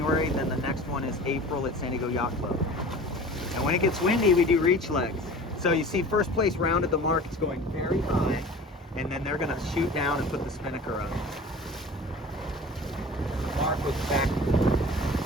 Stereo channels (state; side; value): normal; both; correlation 0.41